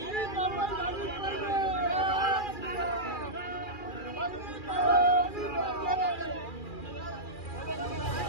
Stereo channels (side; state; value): right; late; 2.4 ms